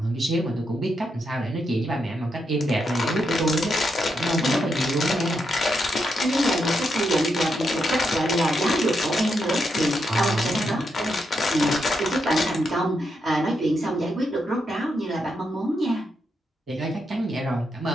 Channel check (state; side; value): normal; both; correlation 0.82